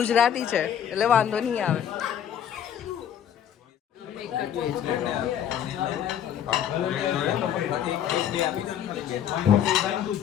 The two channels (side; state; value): right; quieter; 9.7 dB